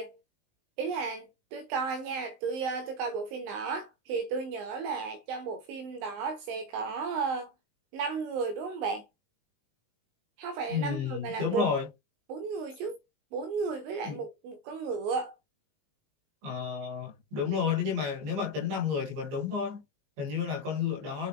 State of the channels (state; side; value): late; left; 19 ms